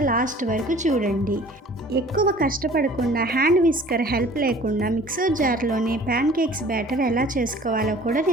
లాస్ట్ వరకు చూడండి. ఎక్కువ కష్టపడకుండా హ్యాండ్ విస్కర్ హెల్ప్ లేకుండా మిక్సర్ జార్లోనే ప్యాన్కేక్స్ బ్యాటర్ ఎలా చేసుకోవాలో కూడా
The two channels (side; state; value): both; normal; correlation 0.49